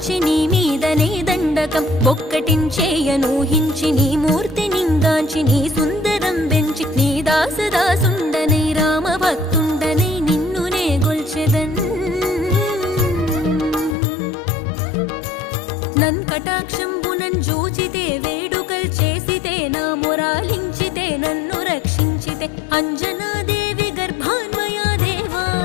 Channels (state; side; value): drops out; right; at 14.0 s